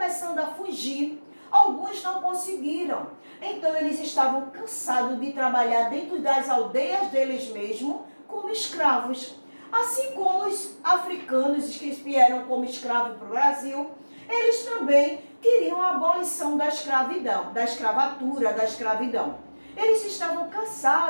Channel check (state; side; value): inverted; both; correlation -1.00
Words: a fugir. Alguns não conseguiram. Então, eles estavam cansados de trabalhar dentro das aldeias deles mesmos como escravos. Assim como os africanos que vieram como escravos para o Brasil, eles também queriam a abolição da escravidão, da escravatura, da escravidão. Eles estavam